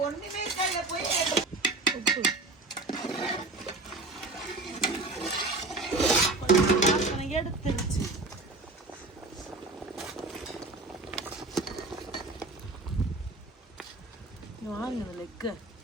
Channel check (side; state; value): left; quieter; 3.2 dB